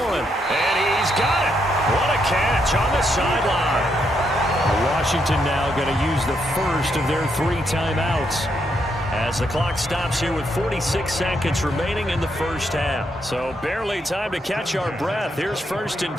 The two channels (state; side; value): normal; both; correlation 0.78